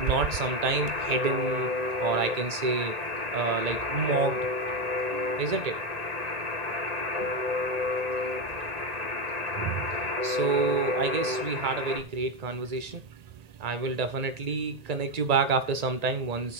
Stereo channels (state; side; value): late; left; 1.9 ms